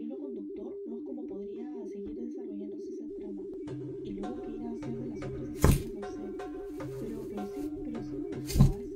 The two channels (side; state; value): both; identical; correlation 1.00